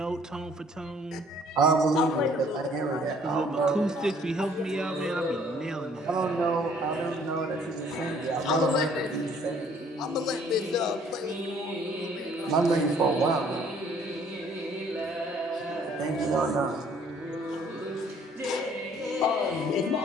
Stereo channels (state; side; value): normal; both; correlation 0.59